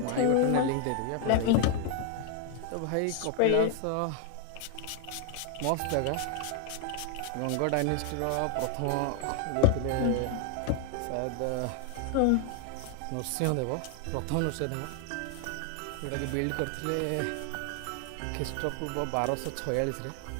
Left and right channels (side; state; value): both; different; correlation 0.00